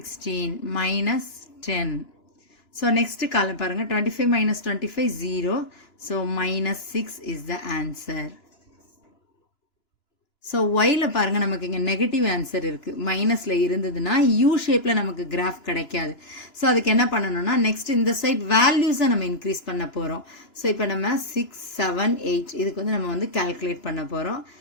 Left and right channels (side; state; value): right; late; 2.9 ms